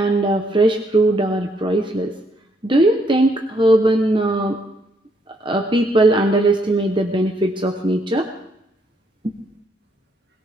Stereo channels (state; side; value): normal; both; correlation 0.72